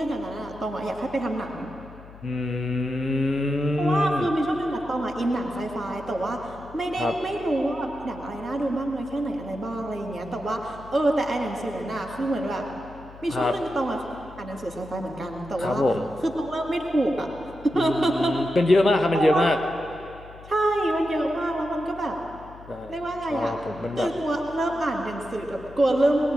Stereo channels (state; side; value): noise; left; hum, 18 dB below the sound